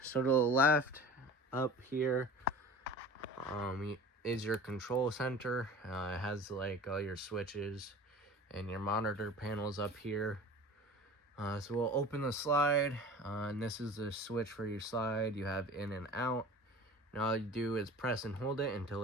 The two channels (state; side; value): normal; both; correlation 0.39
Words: so to the left up here is your control center. It has like all your switches and your monitor panels up here. So we'll open the slide, and this is the switch for your slide. You have in and out. And all you do is press and hold it until